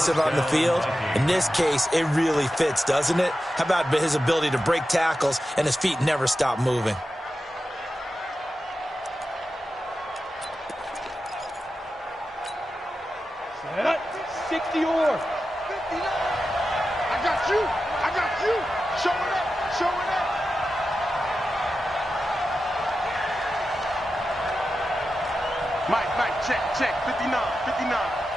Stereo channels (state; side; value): normal; both; correlation 0.91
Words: on the field. In this case, it really fits, doesn't it? How about his ability to break tackles and his feet never stop moving? Set up. 60 or 59. I got you. I got you. Show it up. Show it up. Mike, check. 59.